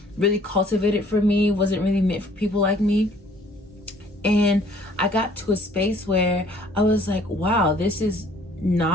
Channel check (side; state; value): both; normal; correlation 0.57